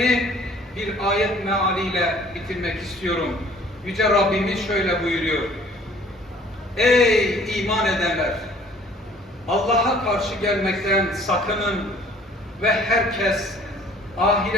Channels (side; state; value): both; normal; correlation 0.54